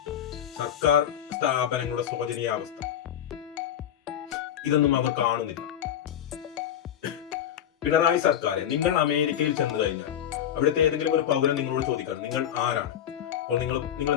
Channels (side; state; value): right; quieter; 10.1 dB